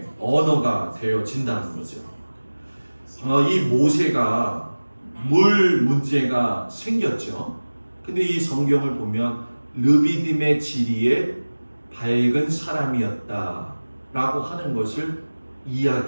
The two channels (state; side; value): inverted; both; correlation -1.00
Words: 언어가 되어진다는 거죠. 이 모세가 물 문제가 생겼죠. 근데 이 성경을 보면 르비딤의 지리에 밝은 사람이었다라고 하는 것을